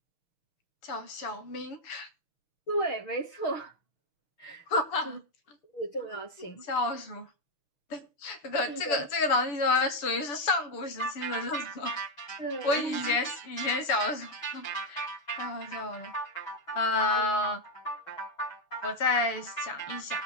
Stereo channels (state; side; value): late; right; 6.9 ms